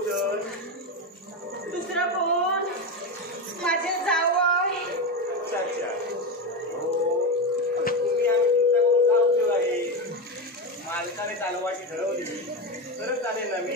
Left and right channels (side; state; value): both; normal; correlation 0.15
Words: दुसरं कोण? माझे जावई. अच्छा अच्छा. हो, तुम्ही आम्ही तुमच्याकडून काय उपयोग आहे? मालकाने चालवायची ठरवली तरच चालेल ना